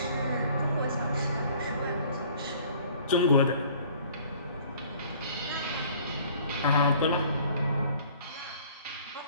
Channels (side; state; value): both; inverted; correlation -0.53